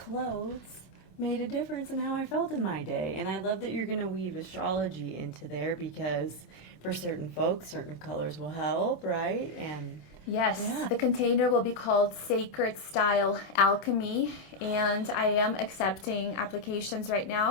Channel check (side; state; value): right; late; 26 ms